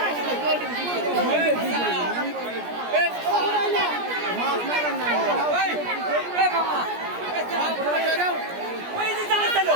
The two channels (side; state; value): left; late; 17 ms